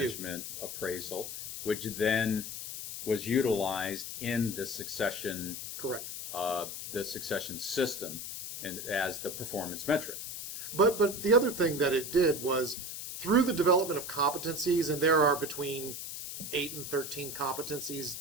appraisal, which then was utilized in the succession. Correct. The succession system and as the performance metric. But the other thing that it did was through the development of competencies, and there are between 8 and 13 competencies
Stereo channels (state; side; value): noise; left; hiss, 7 dB below the sound